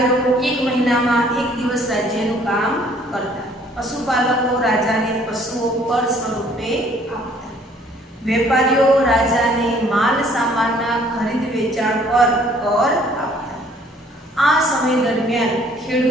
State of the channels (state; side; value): normal; both; correlation 0.59